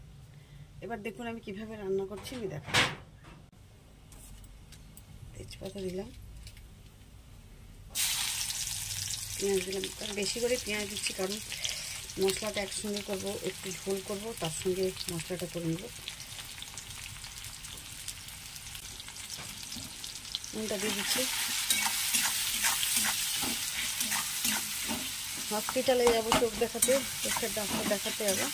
এবার দেখুন আমি কিভাবে রান্না করছি আমি দেখাচ্ছি। তেজপাতা দিলাম, পেঁয়াজ দিলাম। বেশি করে পেঁয়াজ দিচ্ছি কারণ মশলাটা একসঙ্গে করব, একটু ঝোল করব, তার সঙ্গে মশলাটা করে নেব। নুনটা দিয়ে দিচ্ছি। হসপিটালে যাবো চোখ দেখাতে, চোখের ডাক্তার দেখাতে যাবো।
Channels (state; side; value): identical; both; correlation 1.00